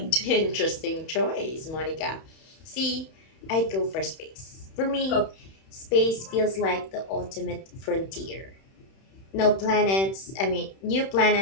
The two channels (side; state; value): right; late; 31 ms